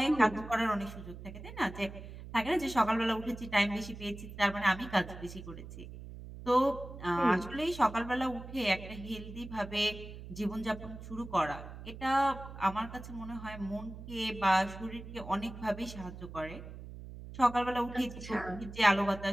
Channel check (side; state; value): right; noise; hum, 12 dB below the sound